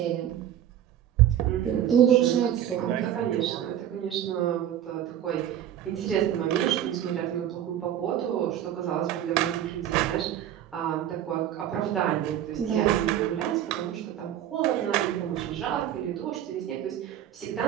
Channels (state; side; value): quieter; left; 11.0 dB